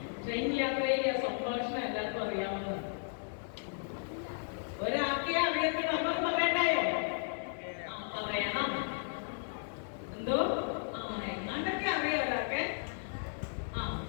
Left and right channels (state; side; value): silent; right; digital silence